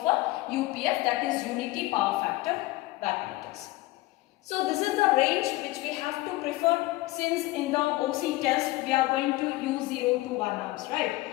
a UPF, that is unity power factor wattmeters. So this is the range which we have to prefer, since in the OC test we are going to use 0 to 1 amps, right?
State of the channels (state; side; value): quieter; right; 19.2 dB